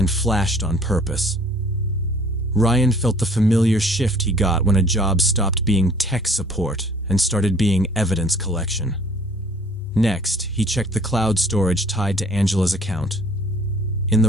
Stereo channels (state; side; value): normal; both; correlation 0.55